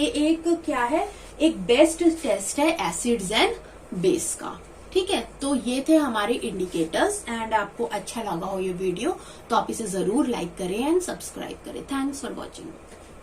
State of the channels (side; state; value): both; identical; correlation 1.00